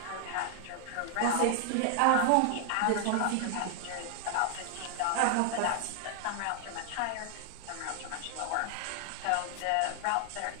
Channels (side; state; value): both; different; correlation 0.00